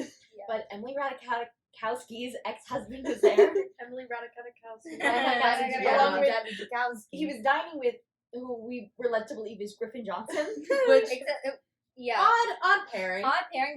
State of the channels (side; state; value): both; identical; correlation 1.00